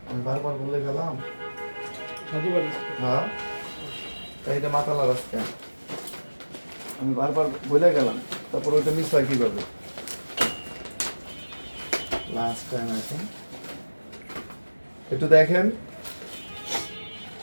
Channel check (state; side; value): inverted; both; correlation -1.00